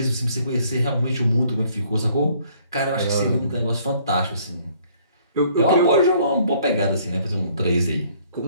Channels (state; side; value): inverted; both; correlation -0.61